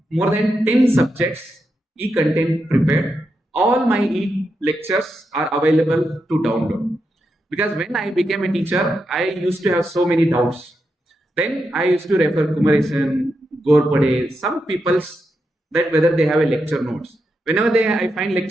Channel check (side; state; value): both; normal; correlation 0.85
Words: more than 10 subjects, e-content prepared. All my e-lectures are available to download. Because when I became a teacher, I used to have so many doubts. Then I used to refer Kumaresan, Gorpade, some people's that whether they have a lecture notes. Whenever I find